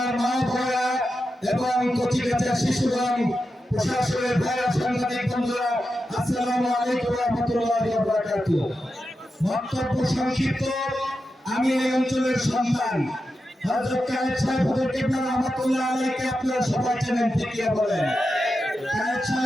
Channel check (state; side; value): normal; both; correlation 0.89